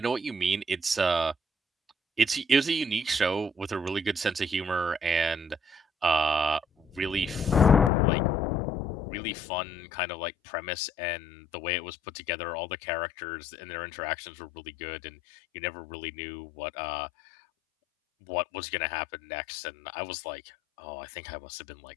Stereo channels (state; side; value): drops out; right; at 7.9 s